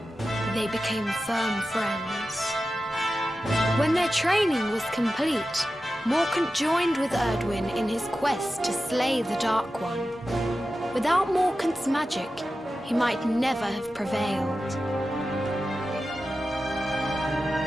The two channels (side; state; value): both; normal; correlation 0.93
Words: they became firm friends. When their training was complete, Morcan joined with Erdwin in his quest to slay the Dark One. Without Morcan's magic, he might never have prevailed.